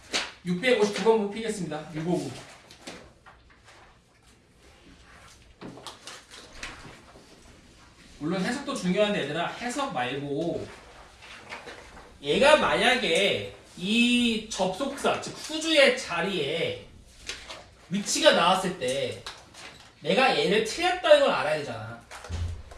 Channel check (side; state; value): both; identical; correlation 1.00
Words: (659번) 피겠습니다. 659. 물론 해석도 중요한데 얘들아, 해석 말고 얘가 만약에 이 접속사 즉 후주의 자리에 위치가 나왔을 때 내가 얘를 틀렸다는 걸 알아야 되잖아.